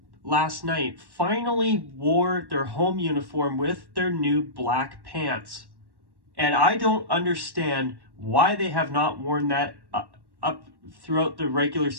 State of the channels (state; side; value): late; left; 1.1 ms